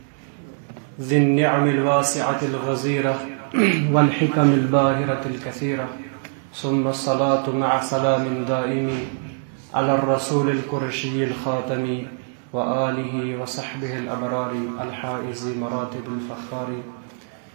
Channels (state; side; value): silent; left; digital silence